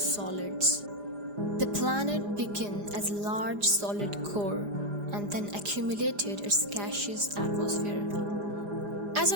The planet began as a large solid core and then accumulated its gaseous atmosphere. As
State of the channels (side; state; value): left; late; 4.9 ms